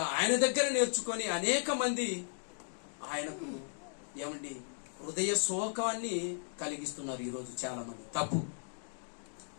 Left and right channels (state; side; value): silent; right; digital silence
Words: ఆయన దగ్గర నేర్చుకొని అనేక మంది ఆయనకు ఏమండి హృదయ శోకాన్ని కలిగిస్తున్నారు ఈరోజు చాలా మంది. తప్పు.